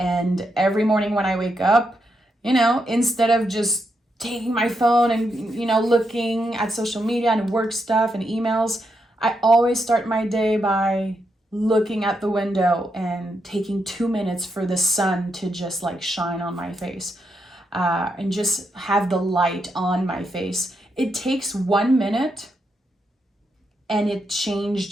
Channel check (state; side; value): normal; both; correlation 0.82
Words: every morning when I wake up, instead of just taking my phone and, looking at social media and work stuff and emails, I always start my day by looking at the window and taking 2 minutes for the sun to just like shine on my face, and just have the light on my face. It takes 1 minute and it